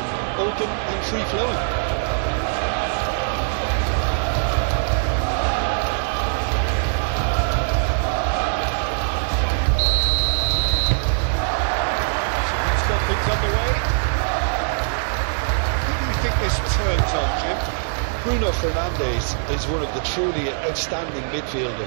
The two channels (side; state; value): left; silent; digital silence